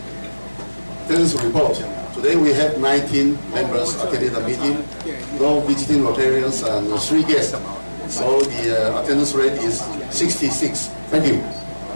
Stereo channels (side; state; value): both; inverted; correlation -1.00